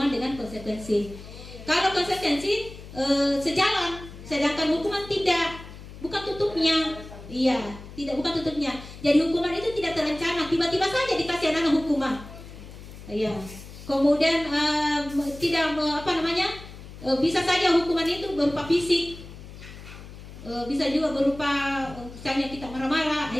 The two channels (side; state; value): left; noise; hum, 15 dB below the sound